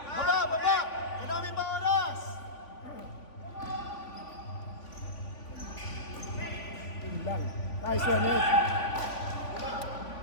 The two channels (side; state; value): right; late; 3.5 ms